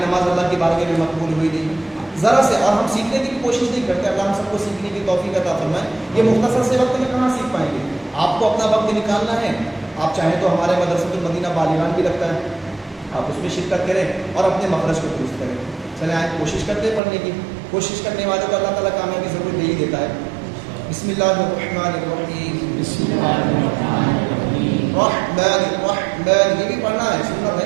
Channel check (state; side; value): drops out; left; at 17.0 s